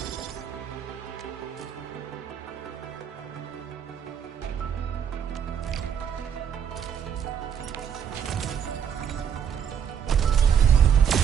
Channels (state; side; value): quieter; left; 8.1 dB